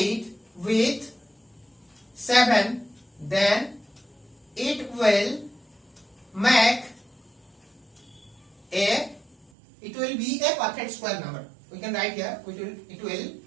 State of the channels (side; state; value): left; drops out; at 9.5 s